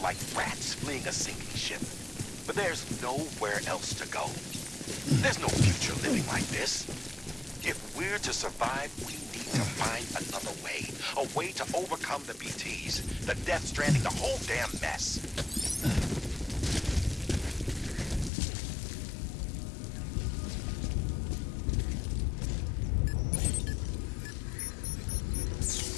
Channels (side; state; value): right; drops out; at 18.3 s